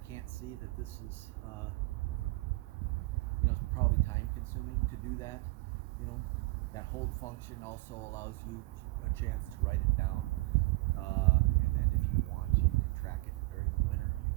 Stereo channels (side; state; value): left; quieter; 23.2 dB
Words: can't see that this is, you know, it's probably time consuming to do that. You know, that hold function also allows you a chance to write it down. And then if you want, you can track it during the winter. You